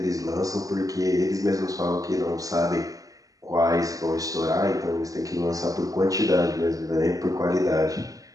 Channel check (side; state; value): left; late; 0.17 ms